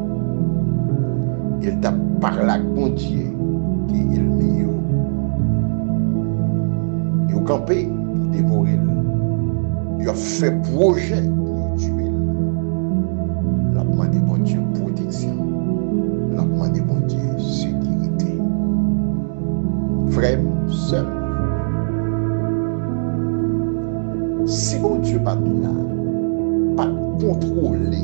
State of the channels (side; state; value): left; silent; digital silence